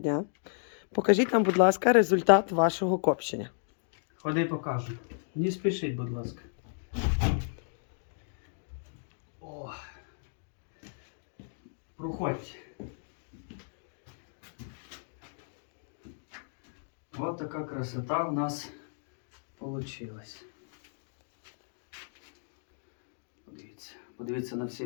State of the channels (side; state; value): right; silent; digital silence